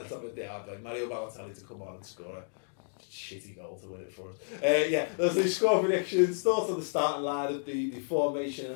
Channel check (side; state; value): right; silent; digital silence